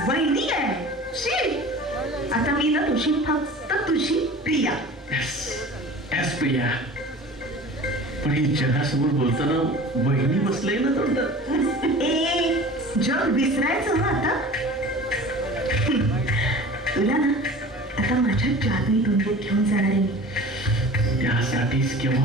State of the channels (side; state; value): both; normal; correlation 0.40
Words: वहिनी आहे शी. आता मी ना तुझी फक्त तुझी प्रिया. एस प्रिया. पण ही जगासमोर बोलताना वहिनी बसलंय ना तोंडात. ए जग विसरायचं ना आता. तुला ना आता माझ्या जादुई दुनियेत घेऊन जाणार आहे. त्यासाठीच